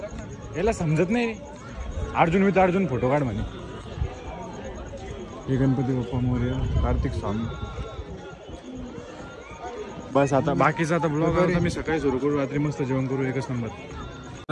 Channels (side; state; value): both; identical; correlation 1.00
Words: याला समजत नाही. अर्जुन विथ अर्जुन फोटो काढ म्हणे. हे गणपती बाप्पा मोरया, कार्तिक स्वामी. बस आता बाकीचा आता ब्लॉग आता मी सकाळी सुरू करू, रात्री मस्त जेवण करू, एकच नंबर.